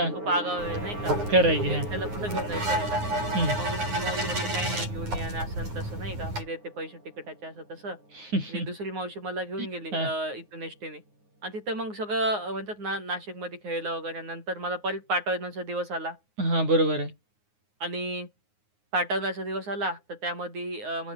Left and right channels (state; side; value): late; left; 9.6 ms